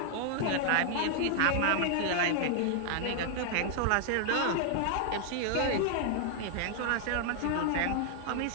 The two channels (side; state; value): both; different; correlation 0.00